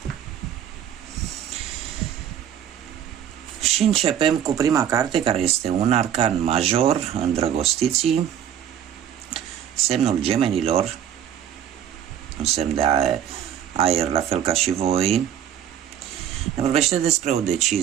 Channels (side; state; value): left; quieter; 9.7 dB